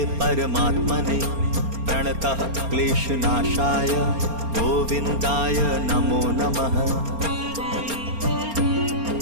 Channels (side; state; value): left; late; 4.3 ms